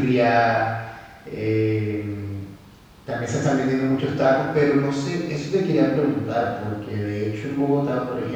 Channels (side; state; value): both; identical; correlation 1.00